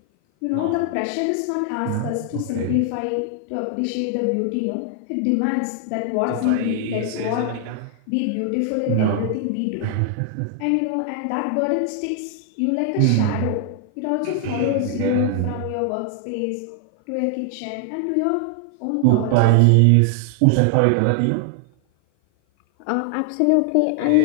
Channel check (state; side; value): different; both; correlation 0.00